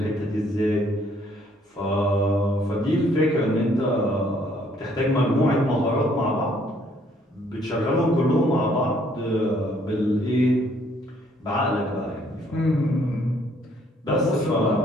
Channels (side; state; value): both; normal; correlation 0.65